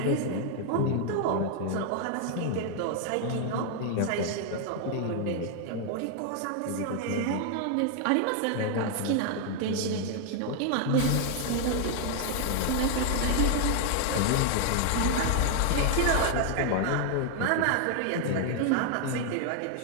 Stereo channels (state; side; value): different; both; correlation 0.00